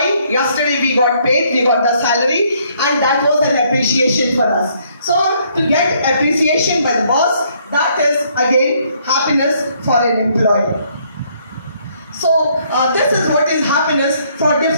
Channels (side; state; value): both; inverted; correlation -0.68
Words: yesterday we got paid, we got the salary, and that was an appreciation for us. So to get appreciation by the boss, that is again happiness for an employee. So this is what is happiness for